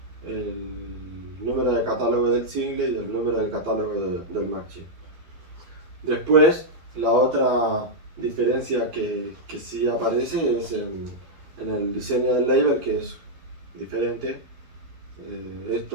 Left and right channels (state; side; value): late; left; 12 ms